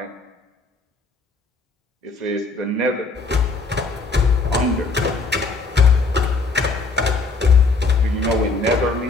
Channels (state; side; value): quieter; right; 3.9 dB